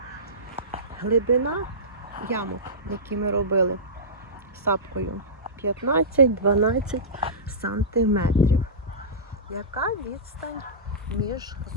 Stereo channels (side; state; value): both; normal; correlation -0.19